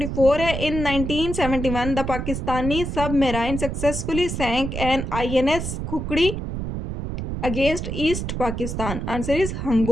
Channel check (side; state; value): right; noise; rumble, 4 dB below the sound